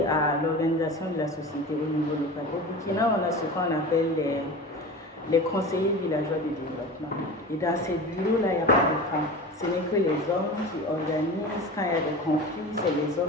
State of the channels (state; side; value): normal; both; correlation 0.32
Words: à l'organisation de la société au niveau local. Au Burkina, on a ce qu'on appelle les conseillers villageois de développement. Et dans ces bureaux-là, il n'y a pas de femmes. Ce n'est que les hommes qui organisent. Quand il y a des conflits, c'est les